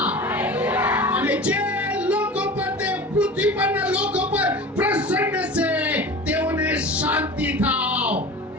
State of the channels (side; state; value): both; normal; correlation 0.35